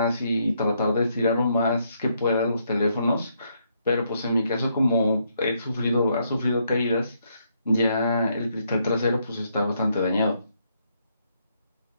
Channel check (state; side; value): inverted; both; correlation -0.75